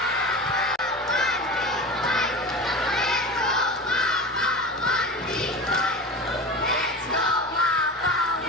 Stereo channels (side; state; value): both; normal; correlation 0.31